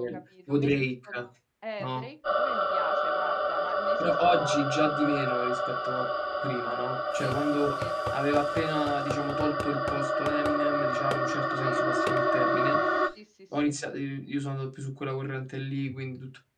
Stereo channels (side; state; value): both; identical; correlation 1.00